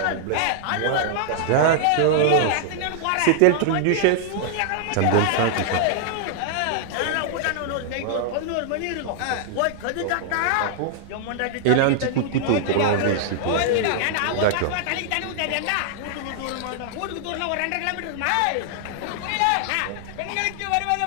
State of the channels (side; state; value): both; different; correlation -0.01